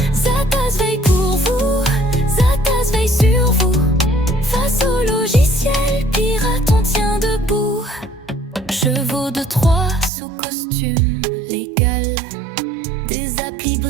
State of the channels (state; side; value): drops out; left; at 10.1 s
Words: Zatas veille pour vous, Zatas veille sur vous. Face au logiciel pirate, on tient debout. Chevaux de Troie sous costume légal, des applis